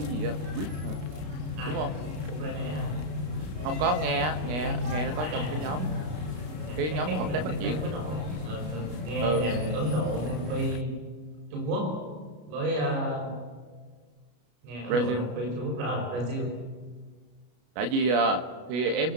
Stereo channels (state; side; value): late; left; 33 ms